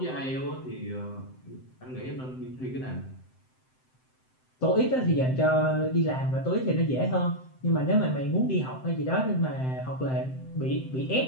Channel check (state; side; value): late; right; 7.8 ms